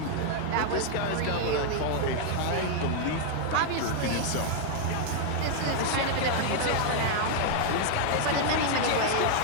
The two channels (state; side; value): different; both; correlation 0.00